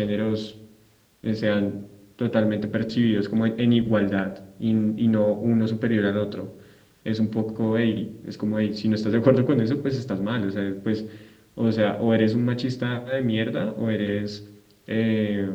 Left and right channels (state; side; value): identical; both; correlation 1.00